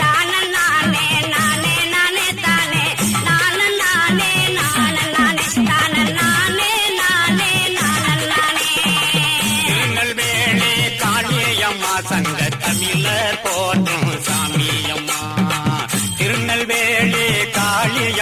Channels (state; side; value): identical; both; correlation 1.00